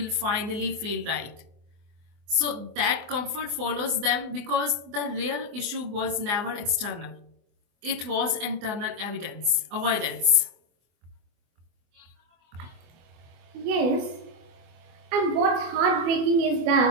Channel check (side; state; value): left; late; 24 ms